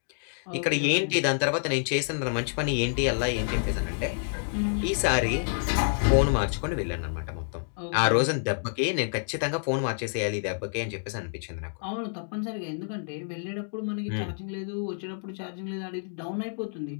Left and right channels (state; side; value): silent; right; digital silence